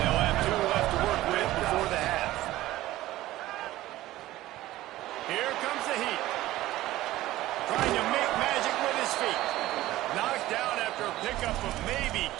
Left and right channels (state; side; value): quieter; left; 16.0 dB